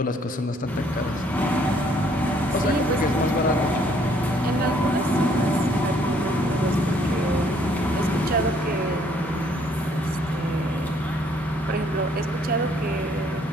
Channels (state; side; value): normal; both; correlation 0.64